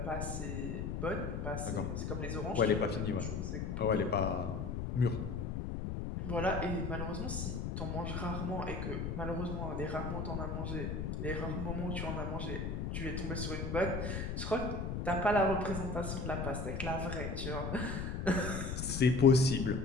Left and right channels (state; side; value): noise; left; rumble, 3 dB below the sound